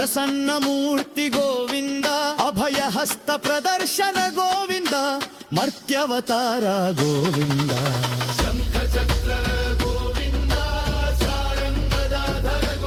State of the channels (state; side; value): identical; both; correlation 1.00